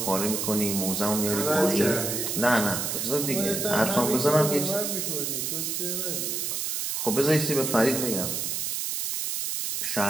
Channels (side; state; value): right; noise; hiss, 2 dB below the sound